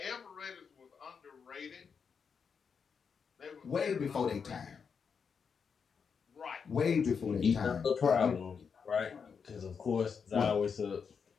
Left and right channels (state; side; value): quieter; right; 6.2 dB